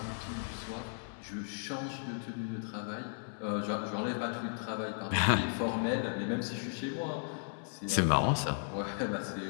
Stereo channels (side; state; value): right; silent; 54 dB below the other